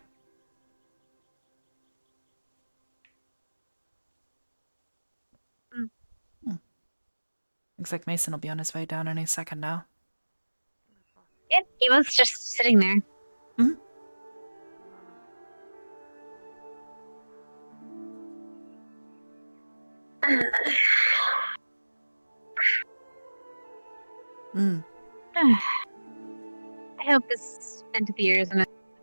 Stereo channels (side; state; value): both; inverted; correlation -1.00